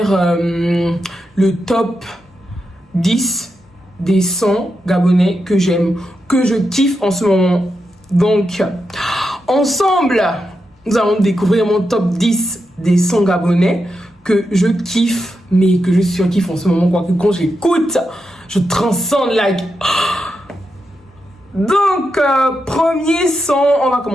le top 10 des sons gabonais que j'aime, que je kiffe en ce moment. Donc, ensemble, nous allons découvrir mon top 10 des sons gabonais que je kiffe, mais que je surkiffe en ce moment, quoi, que quand j'écoute, je transcende like... Donc, premier son, on va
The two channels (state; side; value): normal; both; correlation 0.87